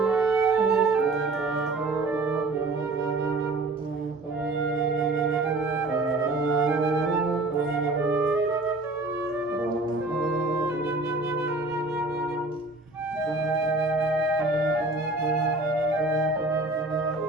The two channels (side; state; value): left; quieter; 3.0 dB